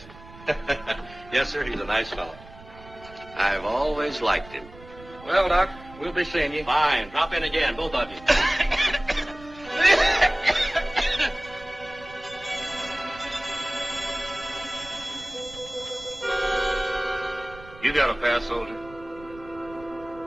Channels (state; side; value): noise; right; rumble, 20 dB below the sound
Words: Yes, sir, he's a nice fellow. I've always liked him. Well, Doc, we'll be seeing you. Fine. Drop in again, both of you. You got a pass, soldier?